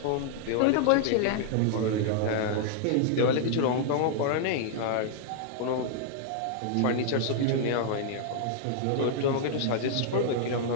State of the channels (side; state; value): both; different; correlation -0.01